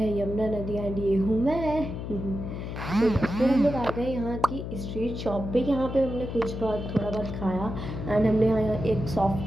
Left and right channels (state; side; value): noise; left; hum, 6 dB below the sound